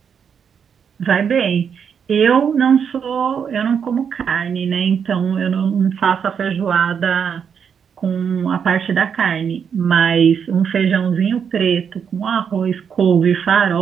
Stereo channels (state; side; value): quieter; left; 7.2 dB